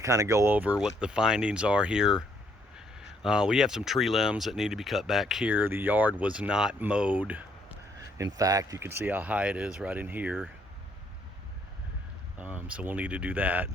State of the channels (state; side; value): normal; both; correlation 0.69